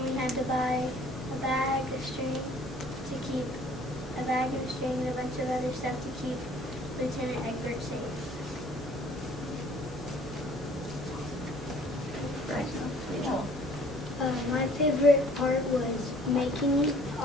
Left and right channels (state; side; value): normal; both; correlation 0.55